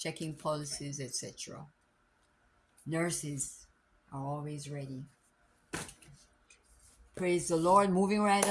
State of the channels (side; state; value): both; identical; correlation 1.00